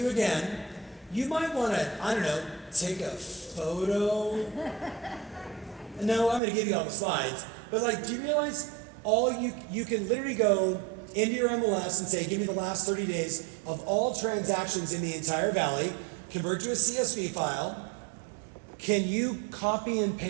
again. You might want to, I don't know, take a photo. No, I'm going to give you all the slides. But like, do you realize you can literally go into your MLS and say, give me the last 30 days of all transactions in the entire valley, convert to a CSV file. Can you copy and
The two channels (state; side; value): drops out; left; at 6.4 s